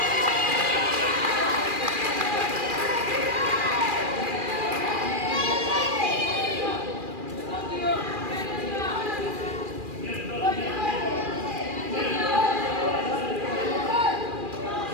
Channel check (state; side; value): late; left; 2.4 ms